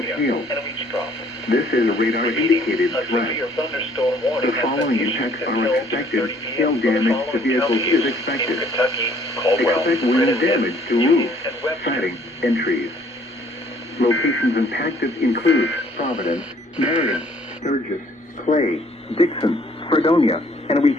hail. This is a radar-indicated threat. The following impacts are expected. Hail damage to vehicles is expected. Expect wind damage to roofs, siding, and trees. Locations impacted include Providence, Marion, Sturgis, Clay, Dixon, Fredonia, and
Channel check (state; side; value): normal; both; correlation 0.60